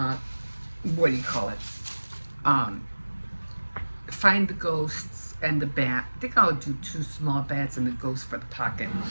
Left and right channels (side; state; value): both; inverted; correlation -1.00